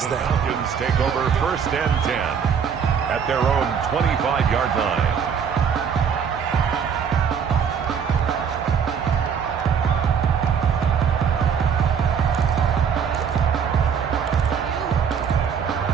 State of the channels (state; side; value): quieter; left; 7.1 dB